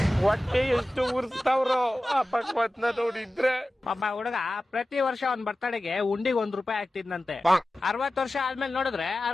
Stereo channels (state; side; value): normal; both; correlation 0.95